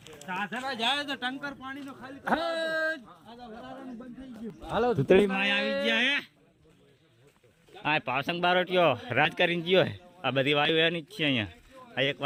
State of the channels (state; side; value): identical; both; correlation 1.00